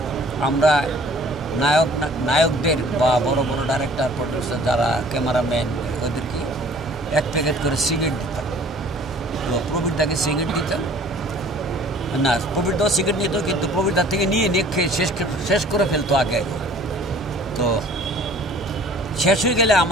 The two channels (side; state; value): both; normal; correlation 0.51